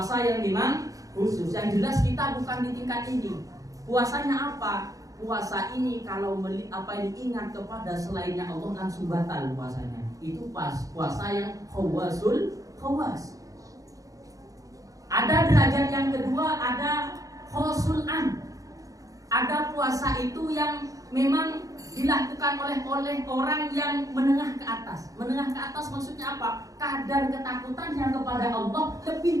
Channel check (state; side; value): late; left; 0.17 ms